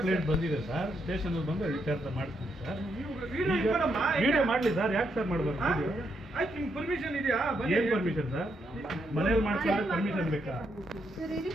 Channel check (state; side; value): normal; both; correlation 0.79